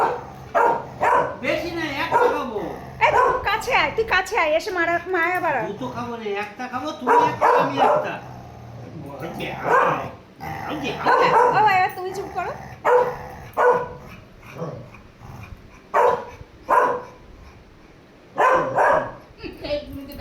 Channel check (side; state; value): both; identical; correlation 1.00